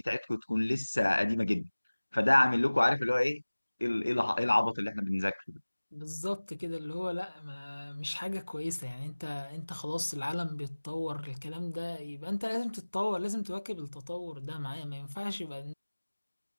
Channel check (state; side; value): inverted; both; correlation -1.00